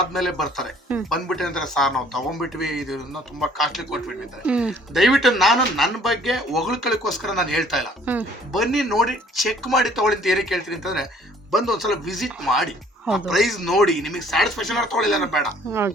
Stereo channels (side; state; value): both; normal; correlation 0.58